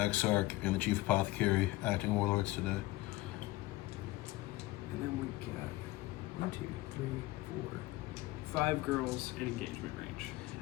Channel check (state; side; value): quieter; right; 18.7 dB